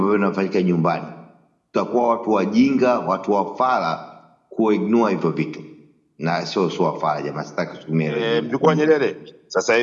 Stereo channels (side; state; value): both; identical; correlation 1.00